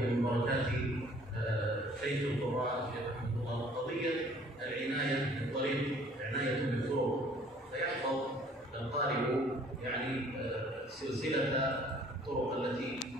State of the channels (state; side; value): normal; both; correlation 0.56